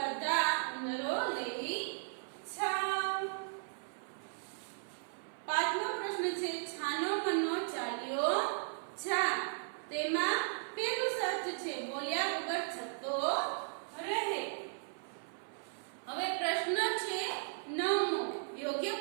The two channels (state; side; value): silent; left; 53 dB below the other